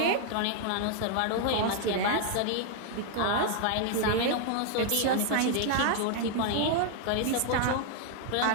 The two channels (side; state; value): both; different; correlation 0.00